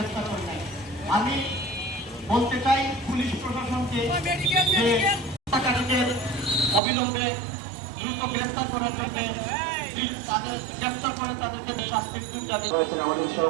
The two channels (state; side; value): drops out; left; at 6.8 s